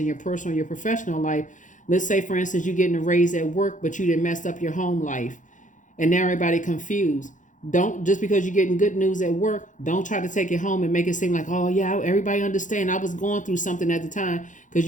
your personal or your professional life, let's say, for instance, you're getting a raise at work, but you didn't mess up your home life. And now everybody confused. Don't, just because you're getting good news at work, don't try to take it home and make it seem like, oh, yeah, everybody understand I was going through something at the time,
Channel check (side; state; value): right; late; 0.37 ms